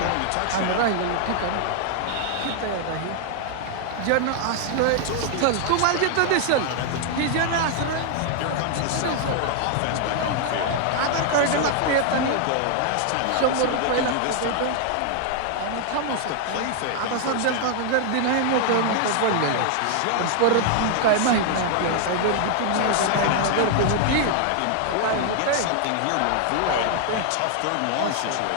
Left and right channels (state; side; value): different; both; correlation 0.00